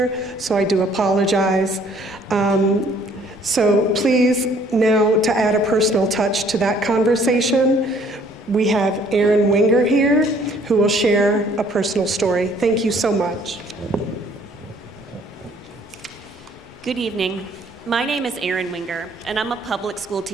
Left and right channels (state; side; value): normal; both; correlation 0.60